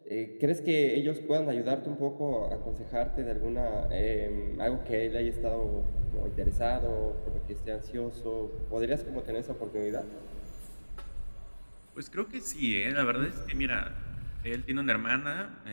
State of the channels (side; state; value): both; inverted; correlation -1.00